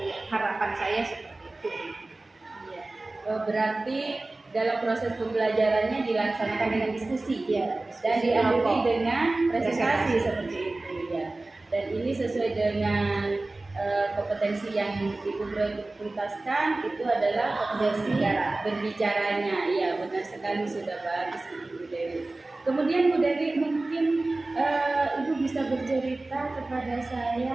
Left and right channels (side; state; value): left; quieter; 3.0 dB